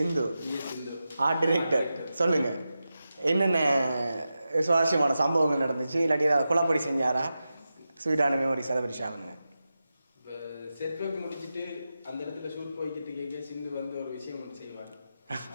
ஆர்ட் டைரக்டர். சொல்லுங்க, என்னென்ன சுவாரஸ்யமான சம்பவங்கள் நடந்துச்சு, இல்லாட்டி ஏதாவது குழப்படி செஞ்சாரா? ஸ்வீட்டான மெமரிஸ் அதை பற்றி ஷேர் பண்ணுங்க. செட் ஒர்க் முடிச்சுட்டு அந்த இடத்துல ஷூட் போய்கிட்டு கேட்க சிந்து வந்து ஒரு விஷயம் ஒன்று செய்வார்.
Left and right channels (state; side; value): inverted; both; correlation -0.92